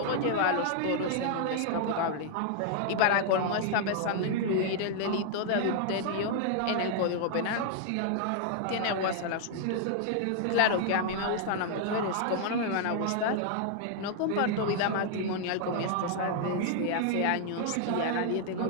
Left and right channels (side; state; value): both; different; correlation 0.00